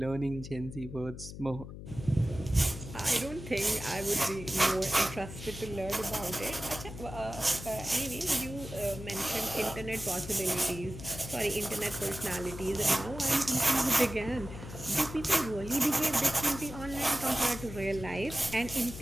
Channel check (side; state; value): left; noise; hum, 11 dB below the sound